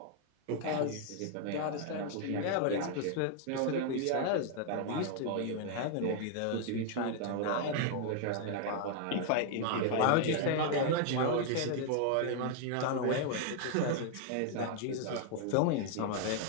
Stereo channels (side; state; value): both; different; correlation 0.00